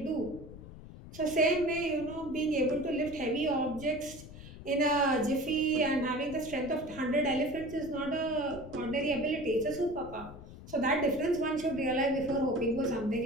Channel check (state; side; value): noise; left; rumble, 15 dB below the sound